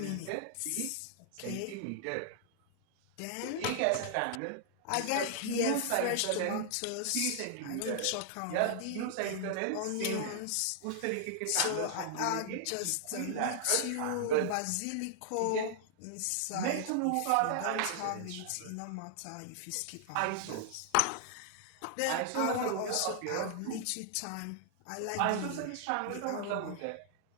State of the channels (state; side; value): different; both; correlation -0.01